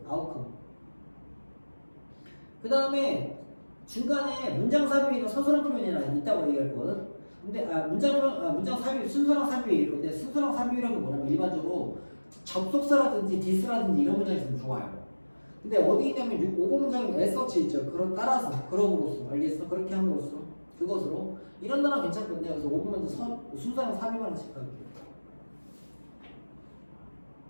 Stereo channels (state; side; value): inverted; both; correlation -1.00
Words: 아웃컴 그 다음에 중간에 문장 삽입이나 서술형 표현이나 있다고 얘기할 거거든. 근데 문장 삽입 순서랑 삽입이 있을 건데 순서랑 삽입이라는 건 뭐냐면 일반적으로 접속사라든지 디스라든지 이런 문장이 있으면 좋아요. 근데 어디 있냐면 5번 문장에 애서치 있죠. 그런 따라서 그럼으로써 알겠어? 그렇게 함으로써 그것으로 이런 단어 괜찮거든요. 그래서 5번 문장 순서랑 3위만 체크할게요.